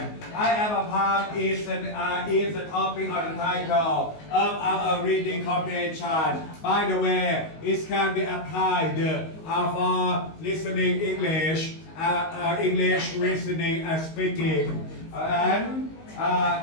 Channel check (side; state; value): right; late; 19 ms